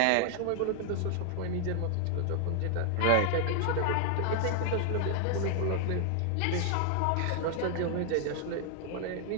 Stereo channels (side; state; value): both; different; correlation 0.00